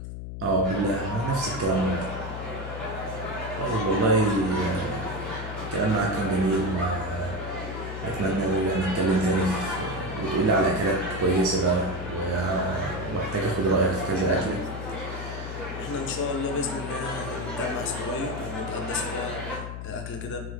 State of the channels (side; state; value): left; noise; hum, 8 dB below the sound